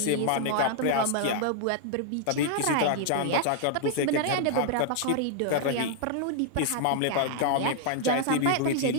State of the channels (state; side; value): different; both; correlation 0.00